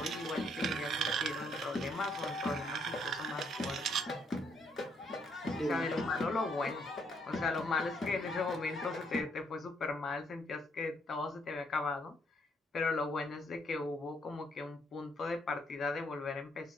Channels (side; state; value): both; normal; correlation 0.71